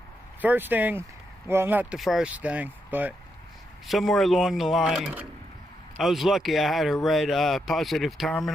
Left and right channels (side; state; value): both; normal; correlation 0.82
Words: First thing, well, not the first thing, but somewhere along the line, I was lucky I had a red positive